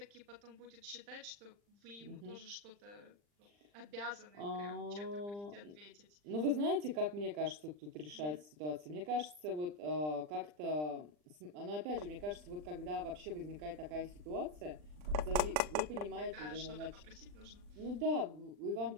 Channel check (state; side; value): late; left; 40 ms